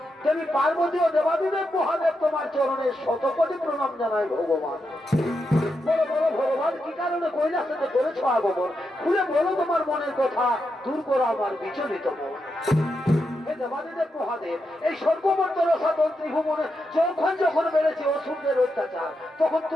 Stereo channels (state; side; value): normal; both; correlation 0.85